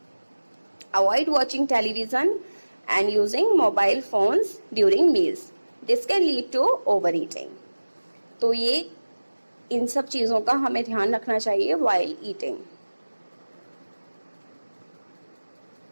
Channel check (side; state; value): both; inverted; correlation -1.00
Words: Avoid watching television and using mobile phones during meals. This can lead to overeating. तो ये इन सब चीज़ों का हमें ध्यान रखना चाहिए while eating.